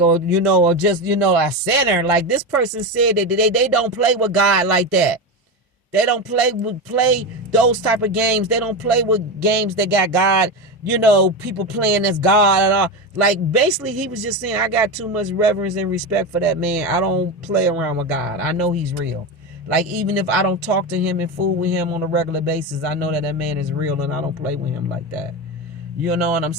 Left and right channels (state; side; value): normal; both; correlation 0.17